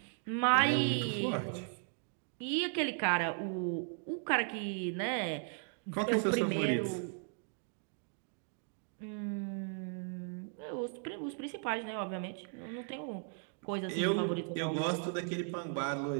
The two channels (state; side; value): silent; left; 53 dB below the other